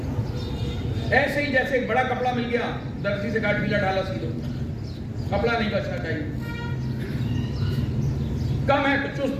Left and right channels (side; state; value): both; identical; correlation 1.00